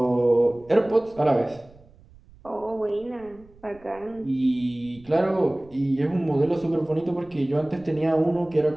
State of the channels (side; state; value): right; noise; rumble, 25 dB below the sound